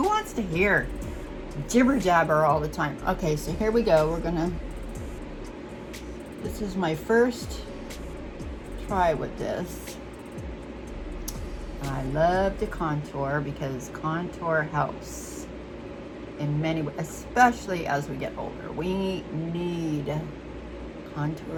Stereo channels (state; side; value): identical; both; correlation 1.00